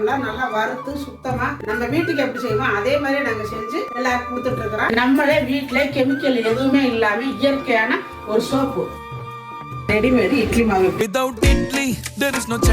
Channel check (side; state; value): both; identical; correlation 1.00